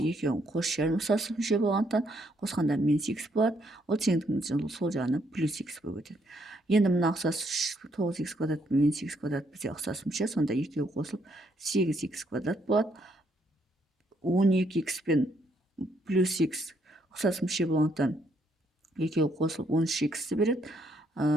екеуін қос шерін ұқсас мүше болғандықтан қосқанда минус x болады. Ол теңдіктің сол жағына плюс x болып өтеді. Енді мына ұқсас 9x квадрат пен минус x квадрат бізде ұқсас мүше, сонда екеуі қосылып 8x квадрат болады. 12x пен плюс x ұқсас мүше болғандықтан екеуі қосылып 13x-ті береді.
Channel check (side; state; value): both; normal; correlation 0.72